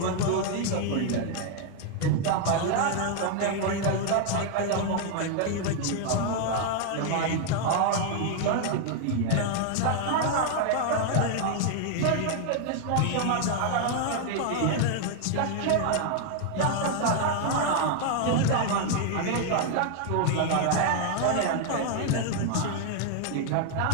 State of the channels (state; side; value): different; both; correlation 0.00